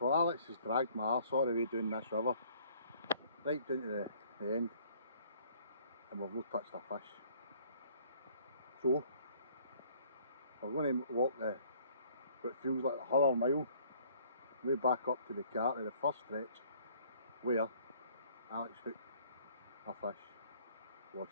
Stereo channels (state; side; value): inverted; both; correlation -0.58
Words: Well, Alex has dragged my arse all the way down this river, right down to the end, and we've not touched a fish. So, we're going to walk what feels like the 100 mile, way back up to the car to the first stretch, where Alex hooked a fish, lost